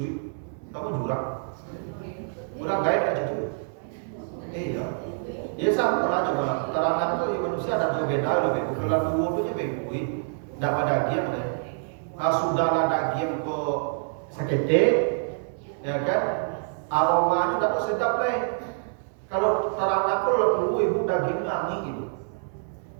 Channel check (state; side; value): silent; left; 61 dB below the other